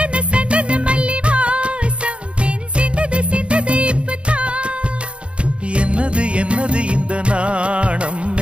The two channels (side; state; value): left; late; 0.059 ms